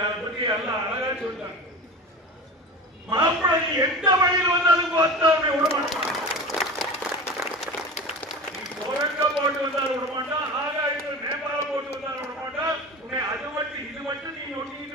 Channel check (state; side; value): normal; both; correlation 0.33